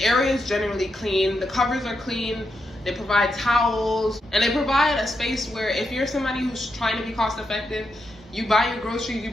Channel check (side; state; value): both; normal; correlation 0.84